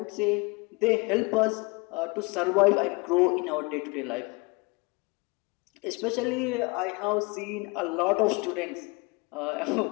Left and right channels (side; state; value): right; quieter; 27.4 dB